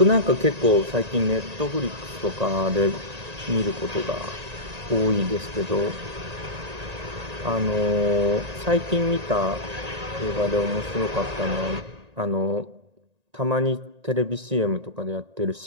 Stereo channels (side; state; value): left; late; 1.9 ms